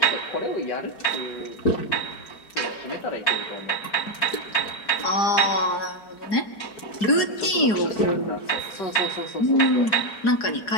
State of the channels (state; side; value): late; right; 4.8 ms